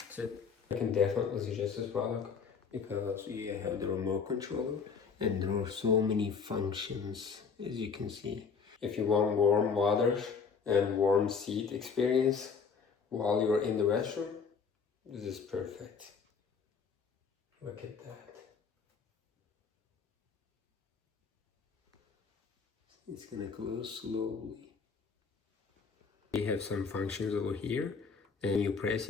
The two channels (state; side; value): quieter; right; 5.8 dB